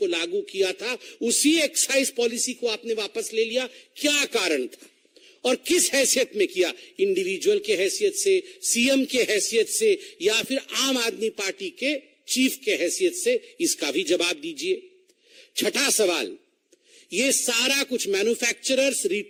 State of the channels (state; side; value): identical; both; correlation 1.00